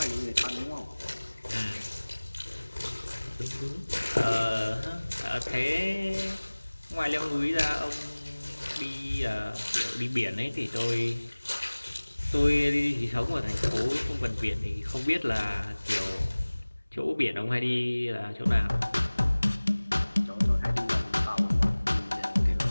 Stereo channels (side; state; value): both; inverted; correlation -1.00